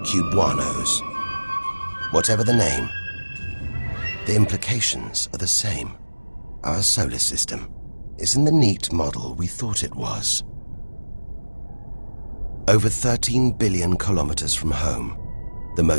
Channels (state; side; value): inverted; both; correlation -1.00